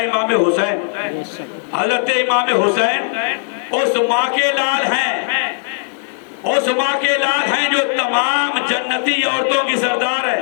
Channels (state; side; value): silent; right; digital silence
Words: حسین۔ بے شک، حضرت امام حسین اس ماں کے لال ہیں، اس ماں کے لال ہیں جو تمام جنتی عورتوں کی سردار